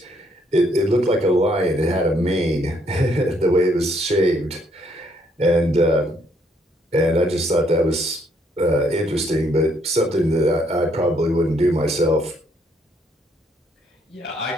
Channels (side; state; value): both; normal; correlation 0.70